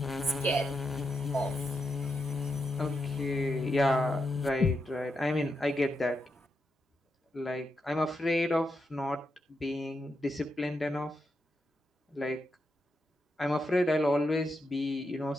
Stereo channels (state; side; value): normal; both; correlation 0.84